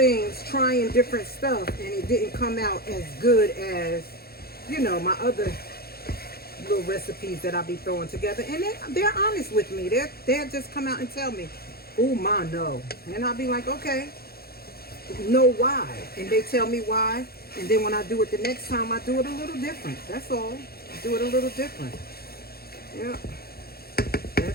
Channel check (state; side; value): late; right; 0.45 ms